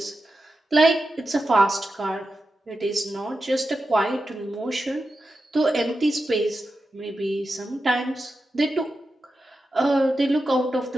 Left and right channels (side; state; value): both; normal; correlation 0.90